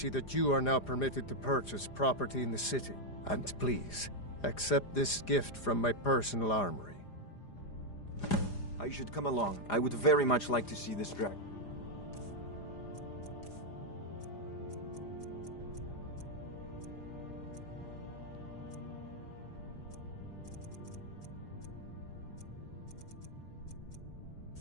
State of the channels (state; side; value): late; right; 5.0 ms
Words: that you are now permitted to purchase property in the city. And please, accept this gift from my personal armory. I should come along. I would very much like to see this dragon.